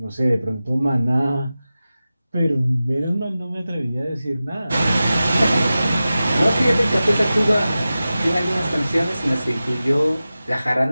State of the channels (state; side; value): inverted; both; correlation -0.95